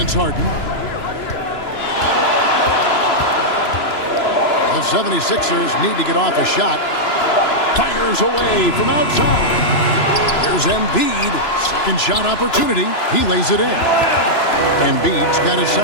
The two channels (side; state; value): right; late; 2.9 ms